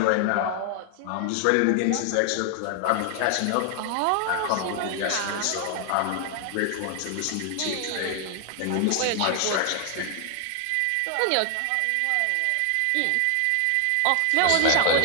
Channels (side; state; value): both; different; correlation 0.00